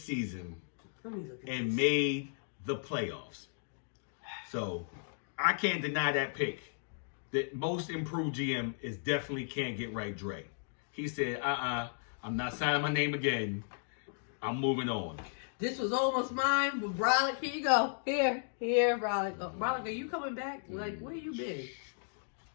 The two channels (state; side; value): silent; right; digital silence